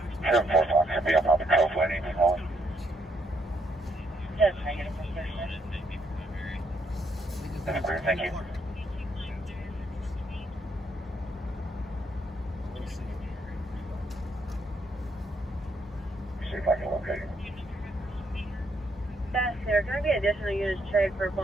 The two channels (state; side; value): normal; both; correlation 0.74